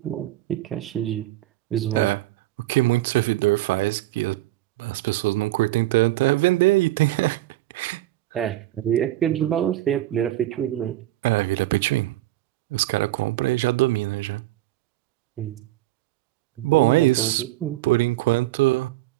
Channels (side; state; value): left; quieter; 15.8 dB